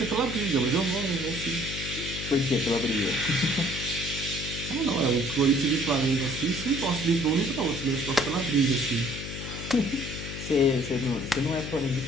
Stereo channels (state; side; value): noise; left; hum, 8 dB below the sound